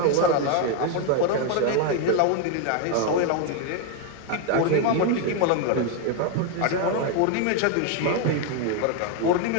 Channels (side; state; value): both; different; correlation 0.01